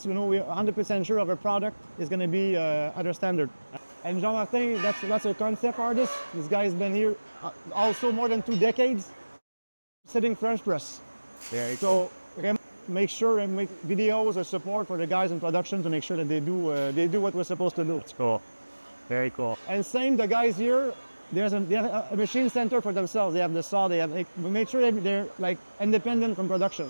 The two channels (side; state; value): both; inverted; correlation -1.00